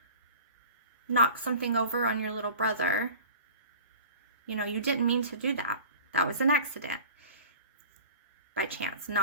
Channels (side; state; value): both; inverted; correlation -0.42